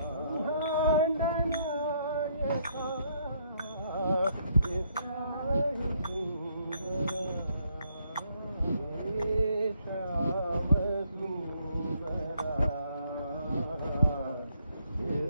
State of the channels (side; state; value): both; inverted; correlation -0.70